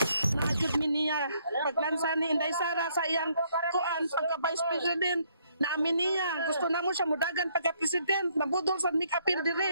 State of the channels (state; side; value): inverted; both; correlation -0.69